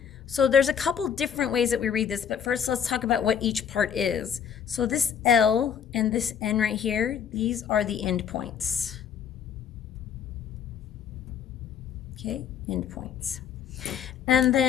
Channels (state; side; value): quieter; right; 8.0 dB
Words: So there's a couple different ways that we read this, but first let's talk about what each part is. So this L and this N right here, these are the endpoints. Okay, endpoints. And